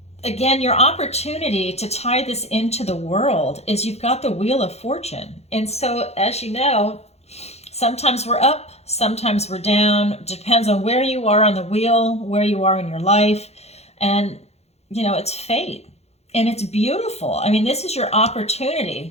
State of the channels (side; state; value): right; late; 0.31 ms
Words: again, your opportunity to tie this into the world is you've got the Wheel of Fortune. And so, as you know, sometimes we're up, sometimes we're down. Depends on where you are on the wheel, where you are in your life. And, it's fate. And it's beautiful. I mean, this is your